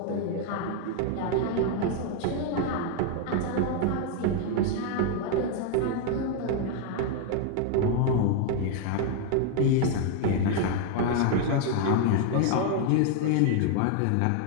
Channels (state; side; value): different; both; correlation 0.00